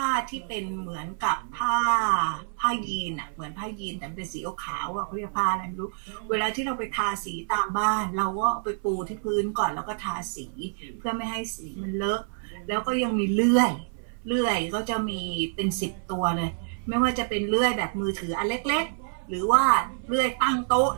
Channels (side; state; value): left; silent; 57 dB below the other